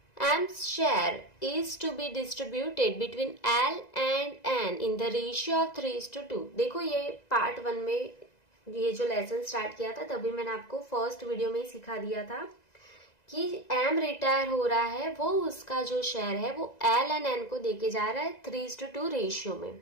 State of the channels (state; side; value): late; right; 2.0 ms